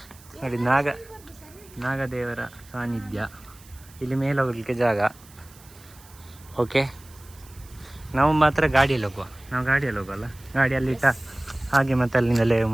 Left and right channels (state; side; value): noise; right; hiss, 24 dB below the sound